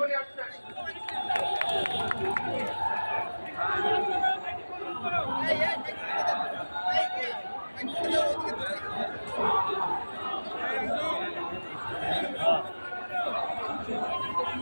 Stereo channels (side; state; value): both; inverted; correlation -1.00